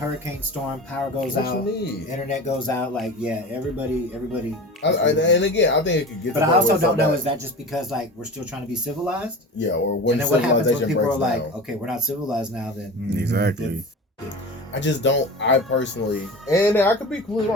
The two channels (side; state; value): both; normal; correlation 0.33